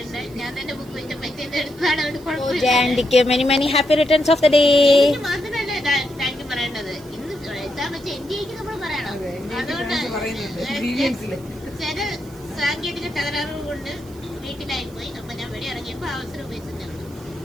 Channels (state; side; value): noise; right; hiss, 24 dB below the sound